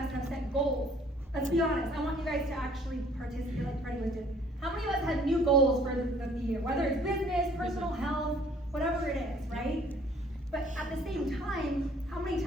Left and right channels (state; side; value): normal; both; correlation 0.57